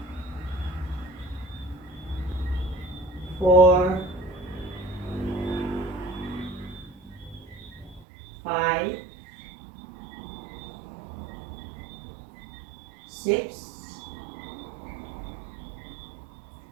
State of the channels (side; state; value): left; drops out; at 8.1 s